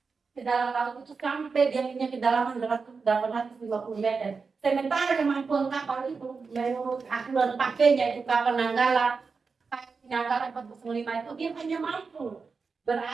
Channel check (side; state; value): left; quieter; 4.9 dB